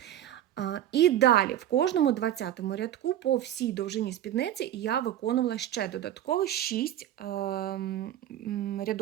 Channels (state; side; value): quieter; left; 12.0 dB